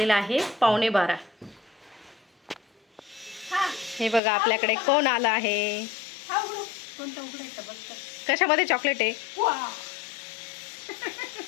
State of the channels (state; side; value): drops out; right; at 4.2 s